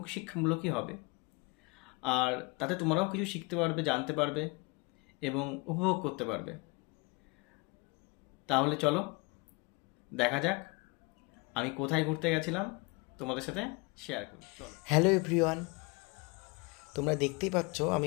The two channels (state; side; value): quieter; right; 28.1 dB